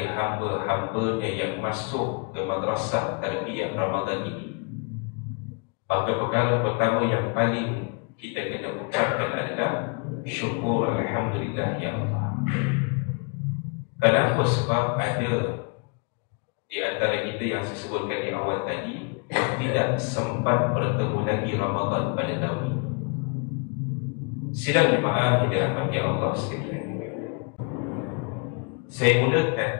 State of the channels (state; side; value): quieter; right; 35.1 dB